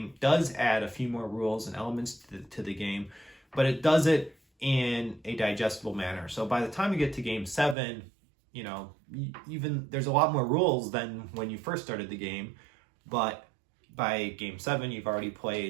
does add a few more rules and elements to the game, but it does it in a digestible manner. So by the time you get to game 7, you know, even there's a lot more rules than when you first started the game, but by game 7 you've already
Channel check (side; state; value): left; drops out; at 7.8 s